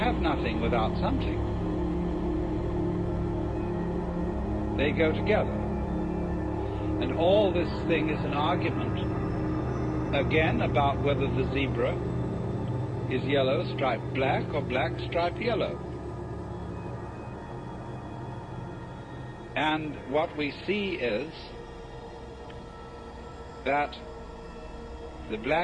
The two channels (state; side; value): identical; both; correlation 1.00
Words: nothing without something. They go together. And all this thing is an argument, again, about whether the zebra is yellow striped black or black striped yellow. And what we see is that the